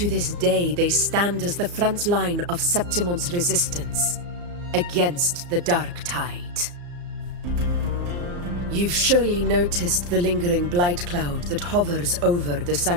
this day, they stand as the front line of Septimon's resistance against the Dark Tide. You've surely noticed the lingering blight cloud that hovers over the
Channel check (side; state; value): left; late; 34 ms